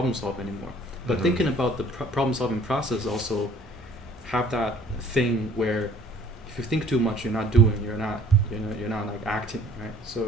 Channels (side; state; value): both; normal; correlation 0.55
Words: solve anymore. But thinking about the problem solving process also have that thing where if you think too much, you're not doing. You're not like acting, right? So